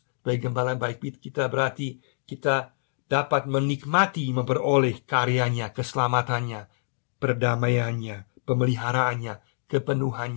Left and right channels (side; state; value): right; silent; digital silence